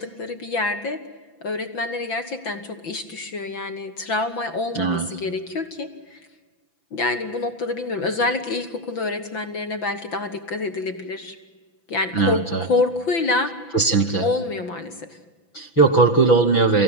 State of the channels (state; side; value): late; right; 6.0 ms